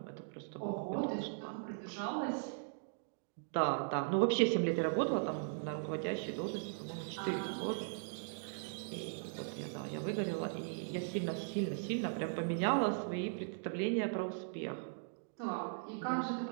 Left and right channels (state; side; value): silent; left; digital silence